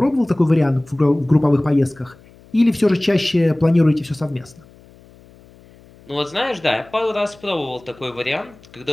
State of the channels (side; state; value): left; noise; hum, 26 dB below the sound